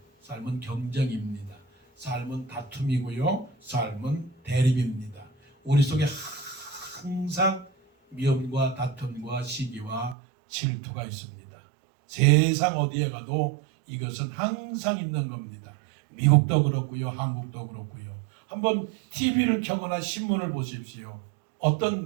경쟁입니다. 삶은 다툼이고요. 삶은 대립입니다. 우리 속에 항상 미움과 다툼과 시기와 질투가 있습니다. 세상 어디에 가도 이것은 항상 있는 겁니다. 미국도 그렇고요, 한국도 그렇고요. 한번 TV를 켜거나 신문을 보십시오.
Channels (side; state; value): left; drops out; at 10.2 s